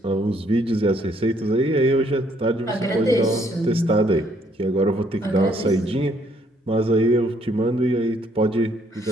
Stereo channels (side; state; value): both; normal; correlation 0.67